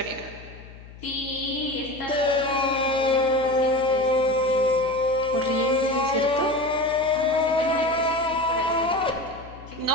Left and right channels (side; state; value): left; noise; hum, 18 dB below the sound